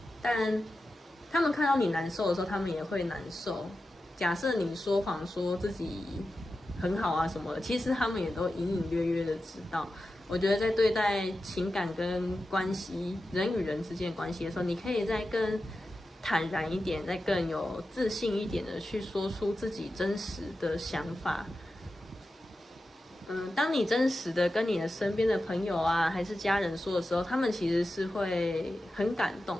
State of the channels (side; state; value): both; normal; correlation 0.92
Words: 但他们看到你难受的时候，他们也会难受。假设你说谎说自己很好啊什么的，其实他们也都隐隐约约的知道。我觉得在对待情感跟关系，人与人之间的关系的时候，你可以再更坦然一点，再更有自信一点的去说出自己真实的想法。当你真实的跟你的身边的朋友啊，还是家人说的时候，他们其实是会很感动